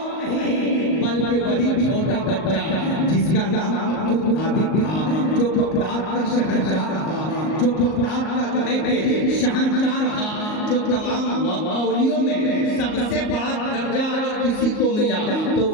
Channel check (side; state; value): right; late; 38 ms